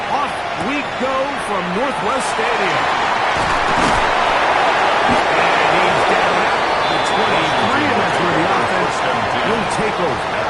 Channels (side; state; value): both; identical; correlation 1.00